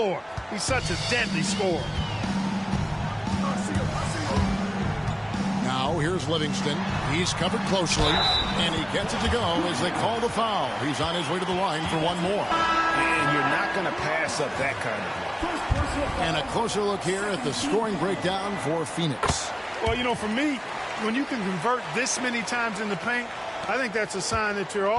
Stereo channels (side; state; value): both; identical; correlation 1.00